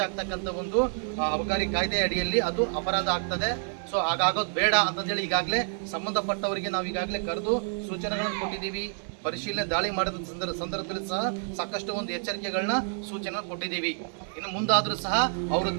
ಆಗ್ತಕ್ಕಂಥ ಒಂದು ಅಬಕಾರಿ ಕಾಯ್ದೆ ಅಡಿಯಲ್ಲಿ ಅದು ಅಪರಾಧ ಆಗ್ತದೆ. ಸೊ ಹಾಗಾಗೋದು ಬೇಡ ಅಂತಂದೇಳಿ ಈಗಾಗಲೇ ಸಂಬಂಧಪಟ್ಟವರಿಗೆ ನಾವು ಈಗಾಗಲೇ ಕರೆದು ಸೂಚನೆಗಳನ್ನು ಕೊಟ್ಟಿದ್ದೀವಿ. ಪರಿಶೀಲನೆ ದಾಳಿ ಮಾಡಿದ ಸಂದರ್ಭದಲ್ಲಿ ಸಹ ಸಾಕಷ್ಟು ಒಂದು ಎಚ್ಚರಿಕೆಗಳನ್ನ ಸೂಚನೆ ಕೊಟ್ಟಿದ್ದೀವಿ. ಇನ್ನು ಮುಂದಾದರೂ ಸಹ ಅವರು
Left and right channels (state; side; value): silent; left; 56 dB below the other